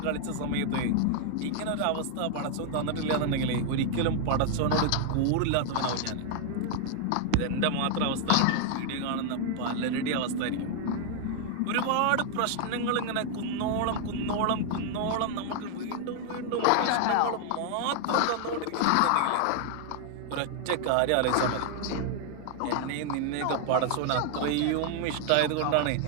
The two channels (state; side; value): different; both; correlation 0.00